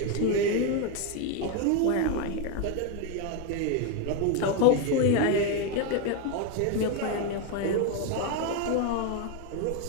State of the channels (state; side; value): different; both; correlation 0.02